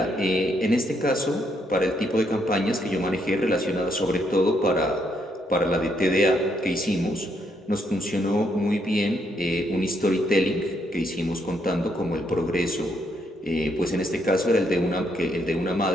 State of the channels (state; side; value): normal; both; correlation 0.75